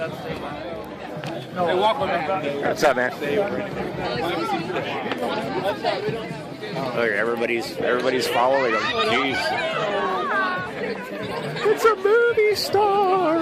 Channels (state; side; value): identical; both; correlation 1.00